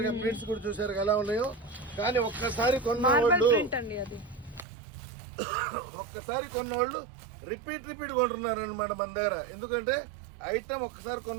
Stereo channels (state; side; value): drops out; left; at 4.7 s